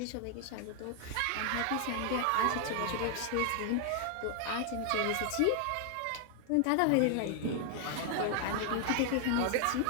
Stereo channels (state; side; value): different; both; correlation 0.00